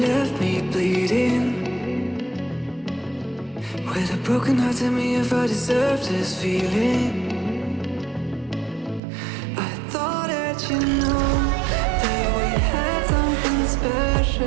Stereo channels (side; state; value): left; drops out; at 9.0 s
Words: me bleeding. With a broken heart, tell me if I deserve this feeling. I thought that you know that we had something